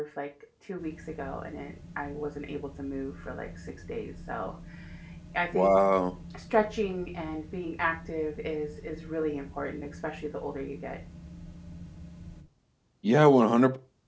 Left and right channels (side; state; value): both; identical; correlation 1.00